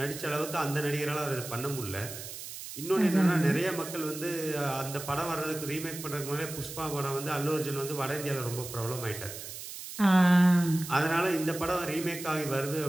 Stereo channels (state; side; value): noise; right; hiss, 10 dB below the sound